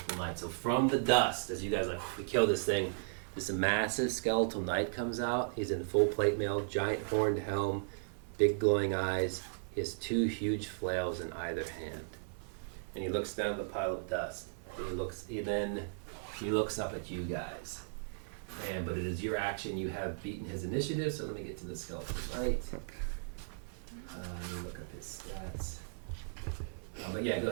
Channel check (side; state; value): left; silent; 54 dB below the other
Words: knight. So from the dust, as you guys we kill this thing, this massive skeletal knight comes out. He's in full plate mail, giant horned helm, big glowing eyes. He has 2 huge flails in either hand. And he looks down at the pile of dust. He looks up at you guys. But it is your action. You have beaten his initiative, so let me get to the skeletal knight. Let me look up his stats. But yeah, go